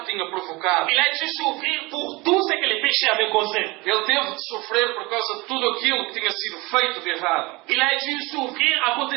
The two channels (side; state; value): left; quieter; 23.8 dB